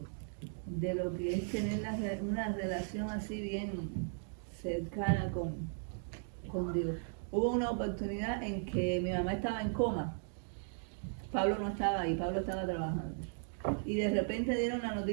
de lo que es tener una relación así bien cercana con Dios. Hubo una oportunidad en que mi mamá estaba en coma. Pablo no estaba ahí, Pablo estaba trabajando. Y de repente dieron la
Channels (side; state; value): left; silent; digital silence